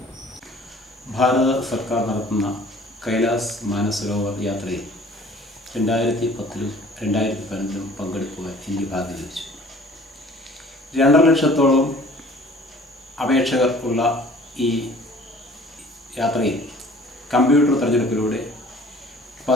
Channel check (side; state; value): both; normal; correlation 0.51